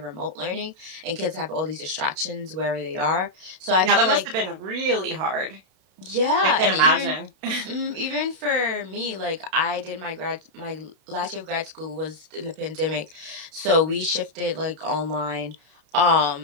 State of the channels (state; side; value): late; left; 32 ms